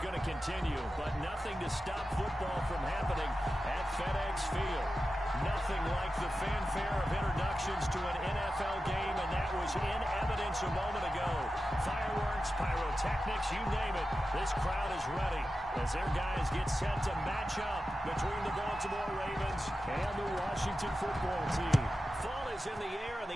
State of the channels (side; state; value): both; normal; correlation 0.92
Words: going to continue. But nothing to stop football from happening at FedEx Field. Nothing like the fanfare of introductions to an NFL game, and that was in evidence a moment ago. Fireworks, pyrotechnics, you name it. This crowd is ready as their guys get set to match up between the Baltimore Ravens and the Washington football team. Fall is in the air, and